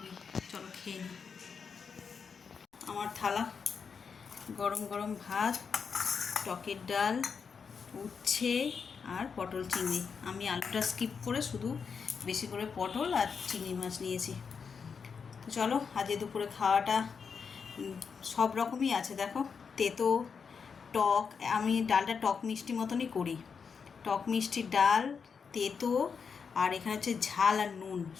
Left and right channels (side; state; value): right; quieter; 6.0 dB